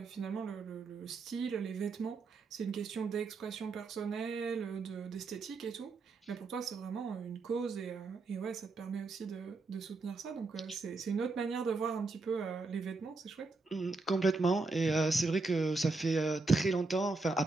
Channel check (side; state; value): left; quieter; 3.7 dB